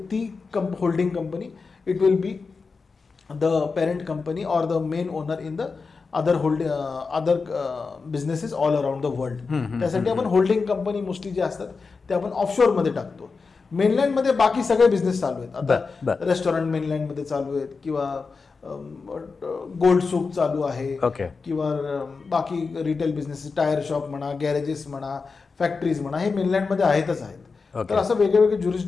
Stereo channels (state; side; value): quieter; right; 4.6 dB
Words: holding company, it will be the parent company or the main owner in the other businesses all around the world. त्यासाठी आपण होल्डिंग कंपनी मोस्टली जे असतात ते आपण ऑफशोरमध्ये टाकतो. मेनलँडमध्ये बाकी सगळे बिझनेस चालू आहेत. आता रेस्टॉरंट मेनलँडमध्ये चालू आहेत, किंवा गोल्ड सूक चालू आहे, किंवा बाकी रिटेल बिझनेस, टायर शॉप म्हणा, गॅरेजेस म्हणा, फॅक्टरीज म्हणा, हे मेनलँडमध्ये आहेतच आहेत. तर असं वेगळे